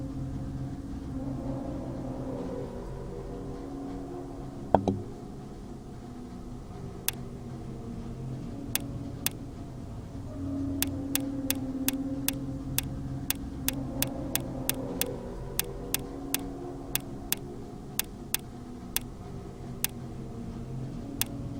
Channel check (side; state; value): both; identical; correlation 1.00